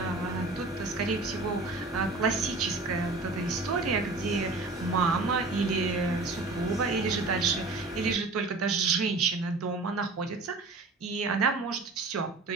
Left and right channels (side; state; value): left; quieter; 3.5 dB